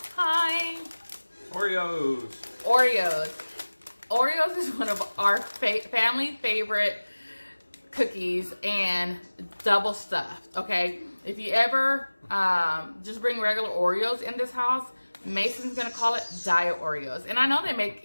time. Oreos. Oreos is one of our family favorite cookies, and double stuffed, okay? If you ever just bring regular Oreos in this house, Mason's gonna call it diet Oreos. And I know they make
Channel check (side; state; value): both; inverted; correlation -1.00